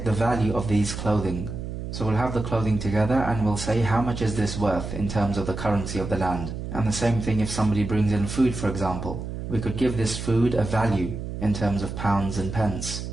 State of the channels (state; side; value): noise; right; hum, 7 dB below the sound